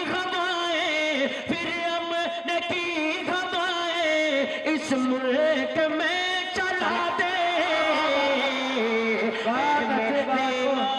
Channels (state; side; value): identical; both; correlation 1.00